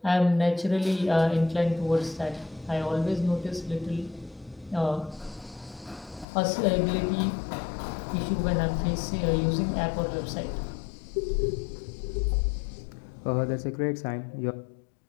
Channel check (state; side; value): drops out; right; at 6.2 s